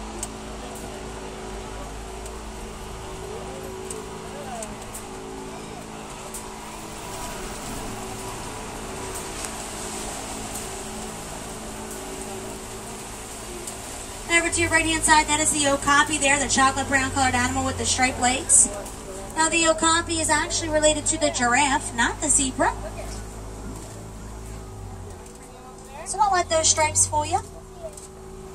Over to your right-hand side, that is the okapi there, the chocolate brown colored animal with the striped legs. Now the okapi is actually related to the giraffe, not the zebra. So don't let those stripes fool you.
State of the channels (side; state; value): both; identical; correlation 1.00